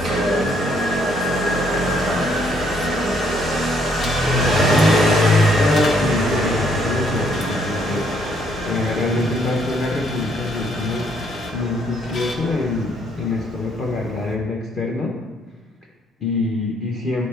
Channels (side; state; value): both; normal; correlation 0.69